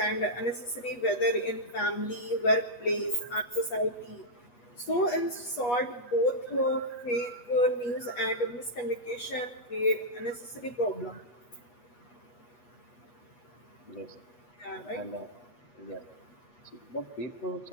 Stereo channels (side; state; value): right; late; 8.3 ms